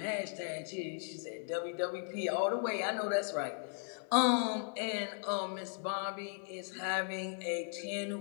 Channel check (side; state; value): right; silent; 53 dB below the other